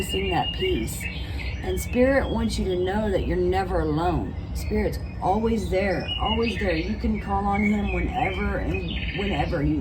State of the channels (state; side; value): identical; both; correlation 1.00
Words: that piece. And Spirit wants you to know that you're never alone. Spirit's always there, always there. You can call on Him whenever and whenever. You